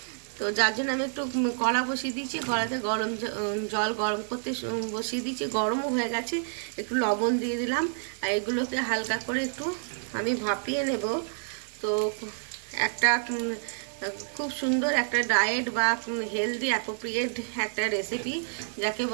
তো যার জন্য আমি একটু কড়া বসিয়ে দিয়েছি, কড়াতে গরম জল গরম করতে বসিয়ে দিয়েছি, গরমও হয়ে গেছে। একটু লবণ দিয়ে দিলাম, আর এগুলোকে হালকা করে একটু আমি ভাপিয়ে নেব। তো একটা খুব সুন্দর একটা ডায়েট বা হেলদি অ্যাপ্রোপ্রিয়েট একটা রেসিপি যাকে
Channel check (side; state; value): left; silent; digital silence